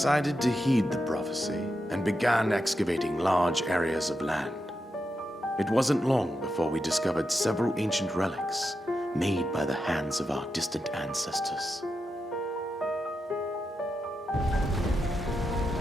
to heed the prophecy and began excavating large areas of land. It wasn't long before we discovered several ancient relics made by the hands of our distant ancestors.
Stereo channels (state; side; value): normal; both; correlation 0.87